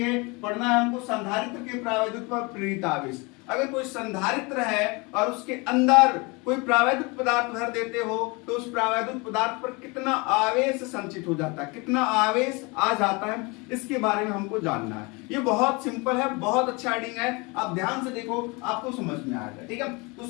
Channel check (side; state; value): right; quieter; 27.5 dB